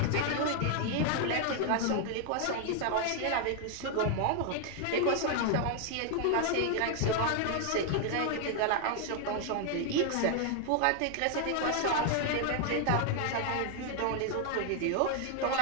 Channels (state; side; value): different; both; correlation 0.00